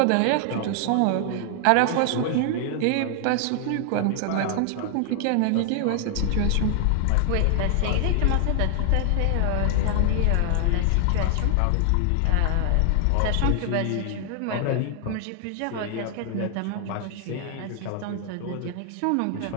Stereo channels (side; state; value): both; different; correlation 0.00